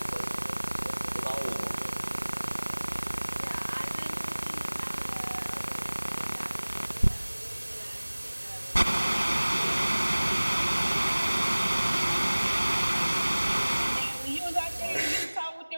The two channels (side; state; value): both; inverted; correlation -1.00